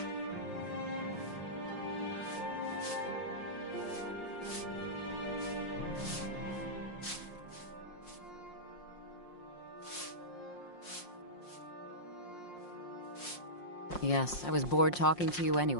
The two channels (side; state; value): right; late; 5.6 ms